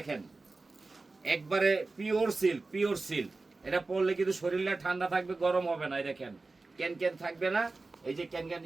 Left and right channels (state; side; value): quieter; left; 3.5 dB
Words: একবারে পিওর সিল্ক, পিওর সিল্ক। এটা পরলে কিন্তু শরীরটা ঠান্ডা থাকবে, গরম হবে না। এই দেখেন ক্যান থাকবে না। এই যে ক্যান